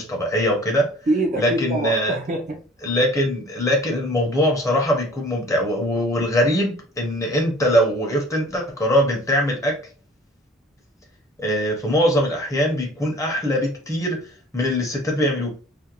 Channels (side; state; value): both; normal; correlation 0.48